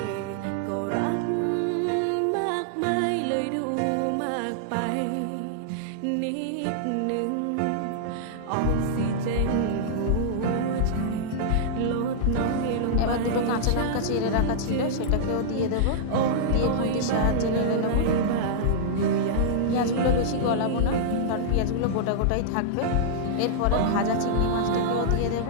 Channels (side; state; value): both; different; correlation -0.02